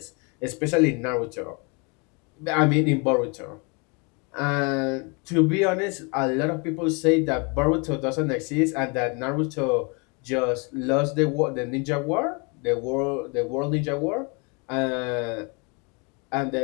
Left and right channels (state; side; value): quieter; right; 32.2 dB